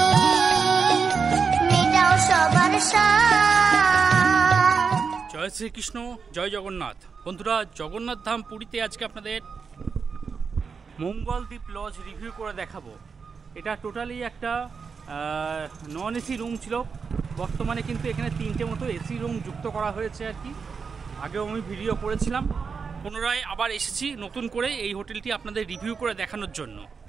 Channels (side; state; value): left; quieter; 5.5 dB